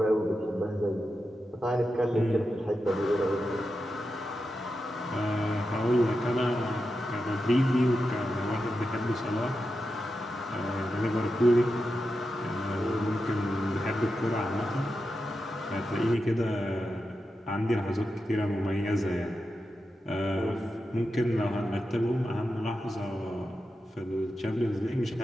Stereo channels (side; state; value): both; normal; correlation 0.89